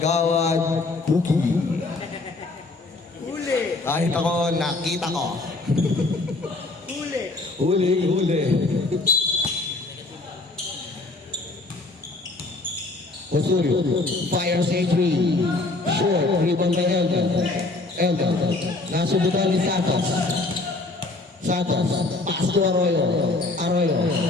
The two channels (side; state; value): right; quieter; 3.2 dB